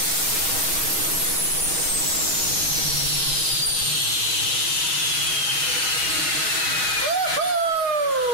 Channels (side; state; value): left; late; 6.3 ms